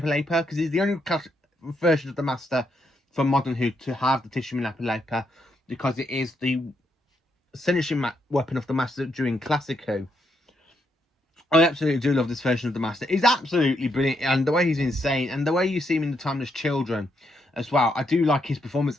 because he's the only version of the Master from Modern Who to have the tissue manipulator, because it is the finishing weapon of the Master during Classic Who. I absolutely do love this version of the Master. He's absolutely brilliant, and the way he's insane, and the way you see him in the Timeless Children as well. I do like his performance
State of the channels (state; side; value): normal; both; correlation 0.78